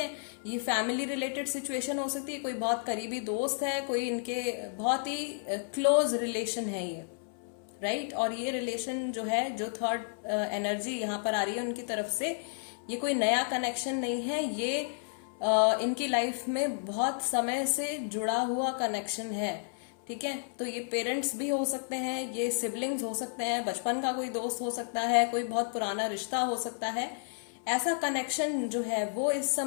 ये फैमिली रिलेटेड सिचुएशन हो सकती है, कोई बहुत करीबी दोस्त है, कोई इनके बहुत ही क्लोज रिलेशन है ये, राइट। और ये रिलेशन जो है, जो थर्ड एनर्जी यहाँ पर आ रही है उनकी तरफ से, ये कोई नया कनेक्शन नहीं है, ये इनकी लाइफ में बहुत समय से जुड़ा हुआ कनेक्शन है, ठीक है। तो ये पेरेंट्स भी हो सकते हैं, ये सिबलिंग्स हो सकते हैं, बचपन का कोई दोस्त हो सकता है, कोई बहुत पुराना रिश्ता हो सकता है। ऐसा कनेक्शन जो है वो इस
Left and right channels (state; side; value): silent; right; 57 dB below the other